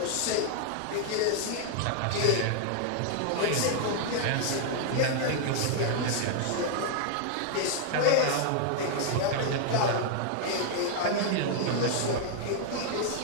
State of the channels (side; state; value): both; different; correlation 0.00